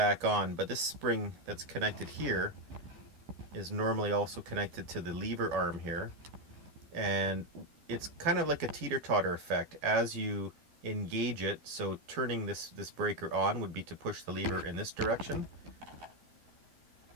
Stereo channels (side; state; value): left; late; 12 ms